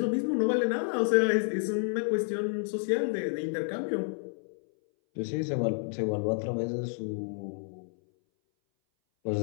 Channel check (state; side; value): silent; right; 58 dB below the other